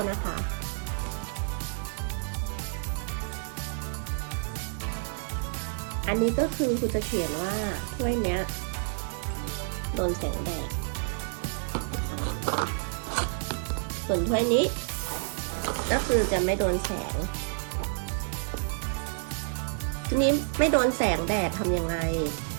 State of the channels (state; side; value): silent; left; digital silence